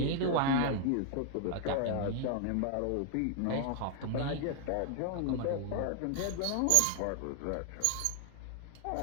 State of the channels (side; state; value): both; different; correlation 0.00